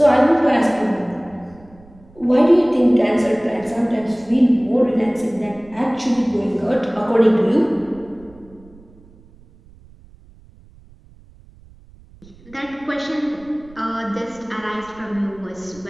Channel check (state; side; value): noise; right; rumble, 25 dB below the sound